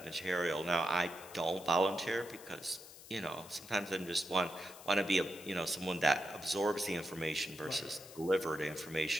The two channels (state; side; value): noise; left; hiss, 17 dB below the sound